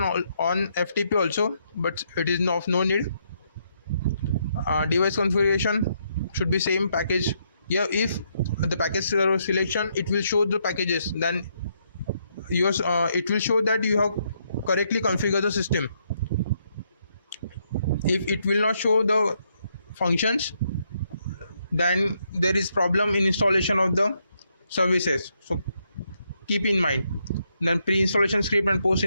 on FTP also, but it is of no need. Device configuration should be same package. Here if the package server selection, it will show the packages, then yours it will show that you have correctly configured the system. If it will not show the functions, then there is problem in installation of the services, so keep in mind. Then pre-installation script and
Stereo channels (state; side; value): inverted; both; correlation -0.76